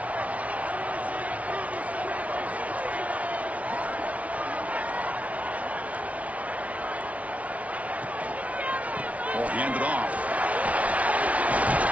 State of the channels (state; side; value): late; left; 0.067 ms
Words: Ball handed off.